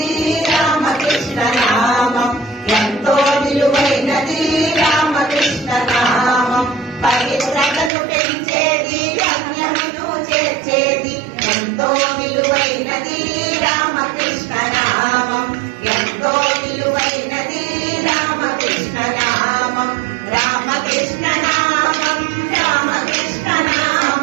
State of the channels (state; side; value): drops out; left; at 7.9 s